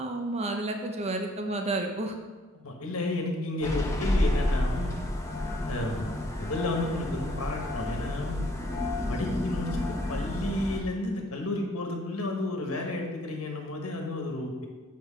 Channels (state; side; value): normal; both; correlation 0.63